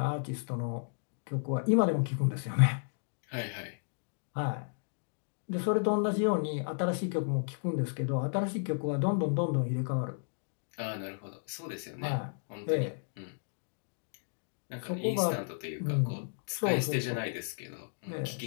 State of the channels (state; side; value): silent; right; digital silence